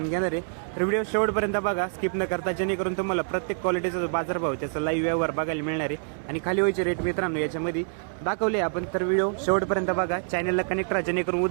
घेणार आहे. तर व्हिडिओ शेवटपर्यंत बघा, स्किप न करता, जेणेकरून तुम्हाला प्रत्येक क्वालिटीचा जो बाजारभाव त्याचा लाईव्ह व्यवहार बघायला मिळणार आहे. आणि खाली व्हायचे रेट मित्रांनो याच्यामध्ये दाखवले आपण. तर व्हिडिओ शेवटपर्यंत बघा, चॅनलला कनेक्ट राहा, जेणेकरून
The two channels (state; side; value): silent; left; 58 dB below the other